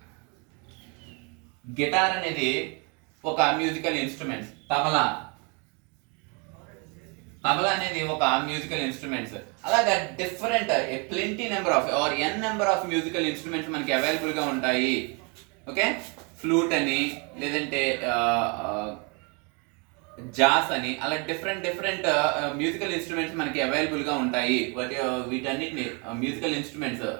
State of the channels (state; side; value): quieter; left; 33.3 dB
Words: గిటార్ అనేది ఒక మ్యూజికల్ ఇన్స్ట్రుమెంట్స్. తబలా అనేది ఒక మ్యూజికల్ ఇన్స్ట్రుమెంట్స్. అలాగా different plenty number of or n number of musical instruments మనకి అవైలబుల్ గా ఉంటాయి. ఓకే, ఫ్లూట్ అని, లేదంటే జాస్ అని, అలా డిఫరెంట్ మ్యూజికల్ ఇన్స్ట్రుమెంట్స్ మనకి అవైలబుల్ గా ఉంటాయి. వీటన్నిటిని musical instruments